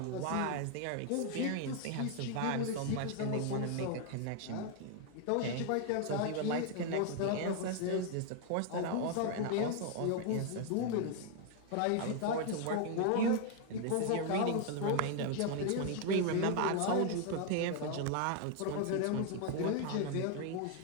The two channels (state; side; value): different; both; correlation 0.00